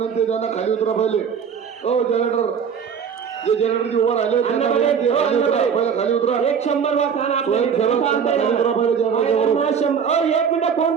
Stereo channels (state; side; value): quieter; left; 7.0 dB